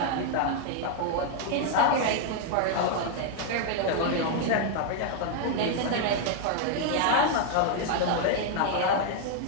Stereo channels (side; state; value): both; different; correlation 0.00